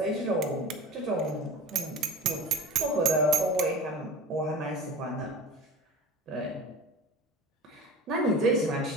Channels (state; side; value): normal; both; correlation 0.35